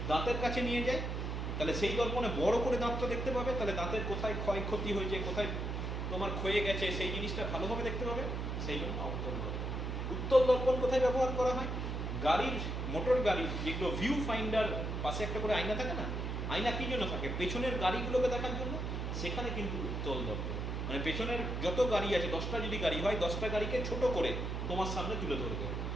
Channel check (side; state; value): right; noise; hum, 3 dB below the sound